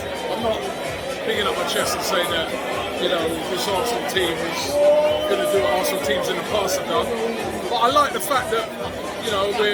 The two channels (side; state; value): both; identical; correlation 1.00